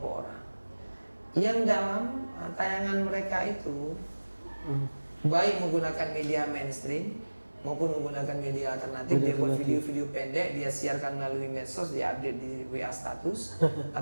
orang yang dalam tayangan mereka itu baik menggunakan media mainstream maupun menggunakan media alternatif. Dia buat video-video pendek, dia siarkan melalui medsos, dia update di WA status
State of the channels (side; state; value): both; inverted; correlation -1.00